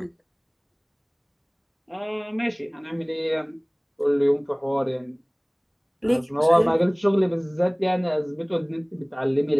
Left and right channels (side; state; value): both; identical; correlation 1.00